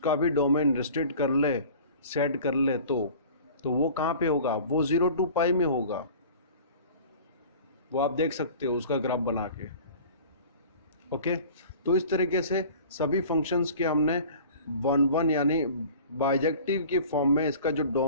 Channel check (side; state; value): both; inverted; correlation -0.43